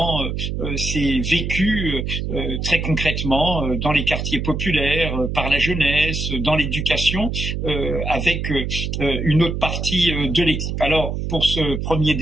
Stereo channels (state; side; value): noise; right; hum, 3 dB below the sound